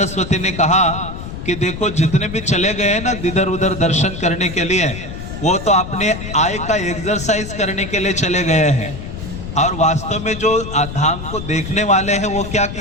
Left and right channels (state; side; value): noise; left; rumble, 9 dB below the sound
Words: ने कहा कि देखो जितने भी चले गए ना इधर उधर दर्शन करने के लिए, वो तो अपने आय का एक्सरसाइज करने के लिए चले गए हैं, और वास्तव में जो धाम को देखने वाले हैं वो क्या